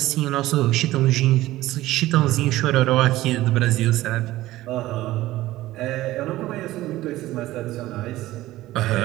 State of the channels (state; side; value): quieter; left; 16.3 dB